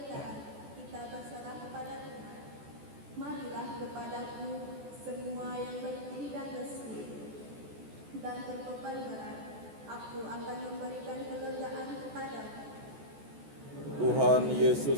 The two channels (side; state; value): left; late; 14 ms